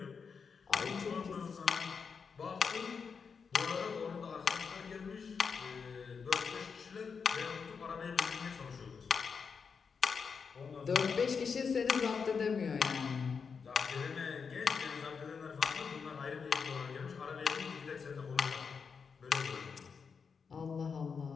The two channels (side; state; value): right; quieter; 5.8 dB